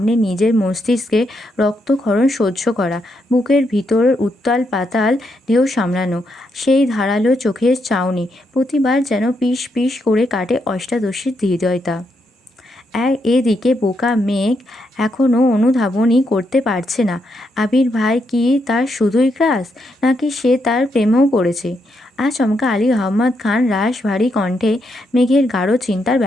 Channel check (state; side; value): normal; both; correlation 0.80